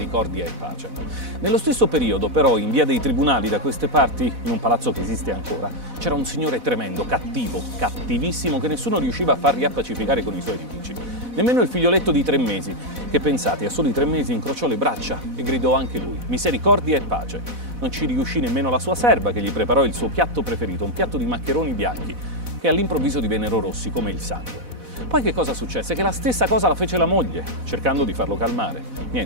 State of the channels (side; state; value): left; late; 4.1 ms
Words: e pace. Nello stesso periodo, però, in via dei Tribunali, da queste parti, in un palazzo che esiste ancora, c'era un signore tremendo, cattivo, cattivissimo, che nessuno riusciva a far riappacificare con i suoi nemici. Nemmeno il figlioletto di 3 mesi, che pensate, a soli 3 mesi incrociò le braccia e gridò anche lui, misericordia e pace. Non ci riuscì nemmeno la sua serva, che gli preparò il suo piatto preferito, un piatto di maccheroni bianchi, che all'improvviso divennero rossi come il sangue. Poi che cosa successe? Che la stessa cosa la fece la moglie, cercando di farlo calmare.